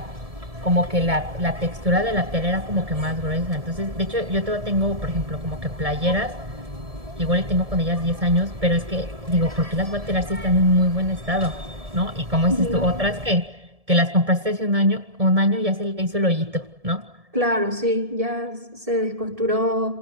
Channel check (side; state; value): left; late; 1.7 ms